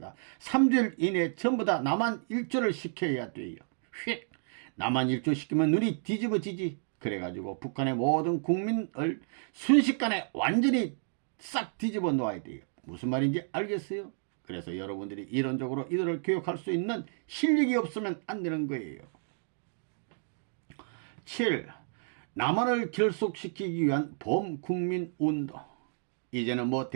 3주일 이내에 전부 다 남한 일조를 시켜야 돼요. 휙! 남한 일조 시키면 눈이 뒤집어지지. 그래가지고 북한의 모든 국민을 순식간에 완전히 싹 뒤집어 놓아야 돼요. 무슨 말인지 알겠어요? 그래서 여러분들이 이론적으로 이들을 교육할 수 있는 실력이 없으면 안 되는 거예요. 7. 남한을 결속시키기 위한 범국민운동. 이제는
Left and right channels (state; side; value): silent; left; digital silence